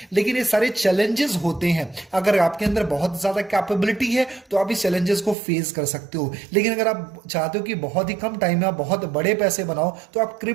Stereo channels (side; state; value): left; drops out; at 5.4 s